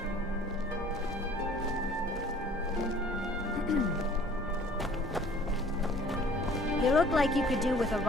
You look like you could do with a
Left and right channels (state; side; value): normal; both; correlation 0.52